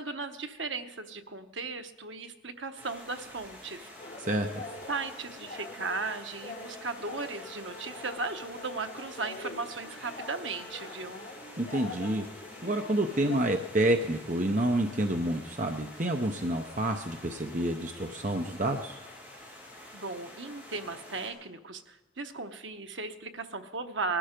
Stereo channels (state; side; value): normal; both; correlation 0.44